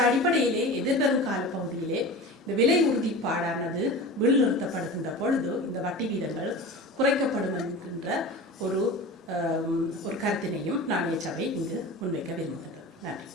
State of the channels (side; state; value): both; normal; correlation 0.33